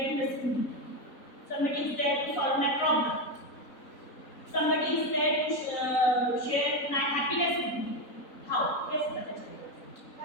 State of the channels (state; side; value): late; right; 3.9 ms